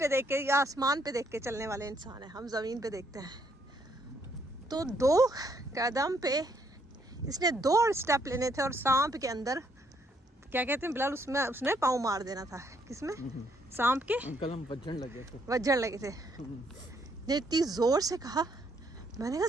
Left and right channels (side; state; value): both; normal; correlation 0.71